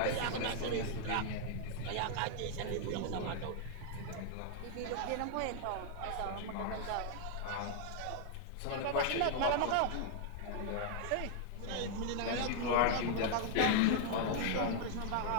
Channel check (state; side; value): different; both; correlation 0.00